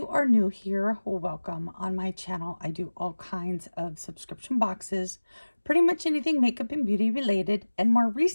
are new here, welcome. On my channel, I do all kinds of subscription boxes, pretty much anything makeup and beauty related. And more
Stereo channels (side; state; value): both; inverted; correlation -1.00